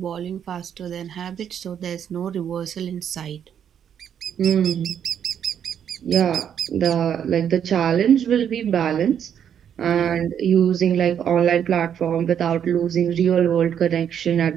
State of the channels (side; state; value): left; quieter; 8.8 dB